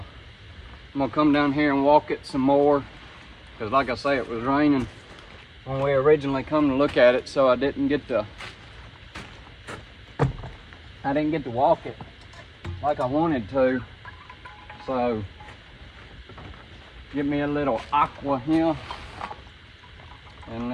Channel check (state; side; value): identical; both; correlation 1.00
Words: gonna come down here and walk it some more, because like I say, it was raining when we originally come to look at it, so I didn't get to walk it like I wanted to. So give me a little aqua here, and